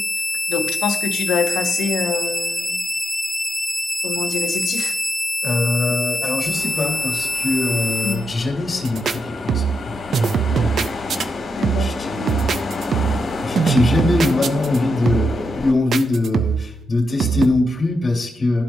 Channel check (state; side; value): normal; both; correlation 0.85